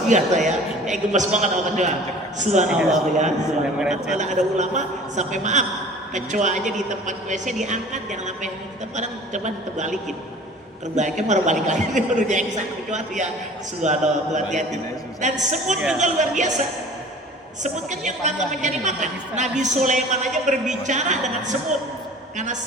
biasa ya. Gemes banget sama kecoa. Subhanallah ya. Subhanallah. Ada ulama sampai maaf, kecoa aja di tempat WC diangkat, jangan sampai kita kadang coba terbalikin. Terbalikin baru balik lagi baru diangkat kecoa tuh ya. Subhanallah, hati-hati. Dan semut juga luar biasa. Semut kan yang nggak mencari makan. Nabi Sulaiman aja berbicara dengan semut karena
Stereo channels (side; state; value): both; normal; correlation 0.44